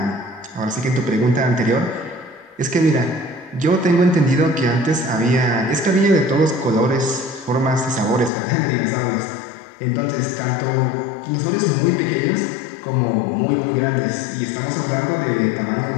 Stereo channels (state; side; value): drops out; right; at 8.3 s